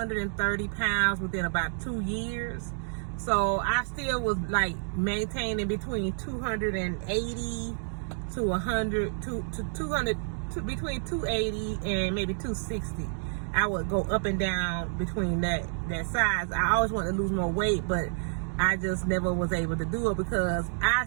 pounds within about 2 years. So I still was maintaining between 280 to 100 to 200, between 280 and maybe 260. I would go up and down between that size. I always wanted to lose more weight, but I just never was able to do it because I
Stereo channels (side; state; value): left; silent; digital silence